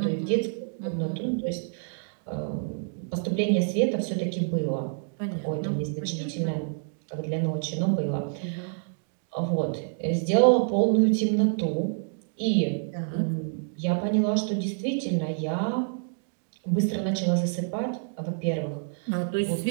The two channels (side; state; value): left; silent; digital silence